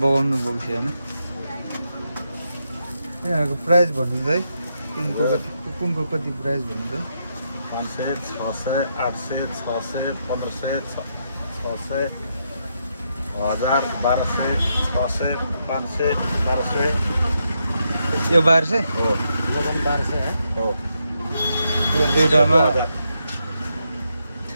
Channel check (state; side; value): inverted; both; correlation -0.81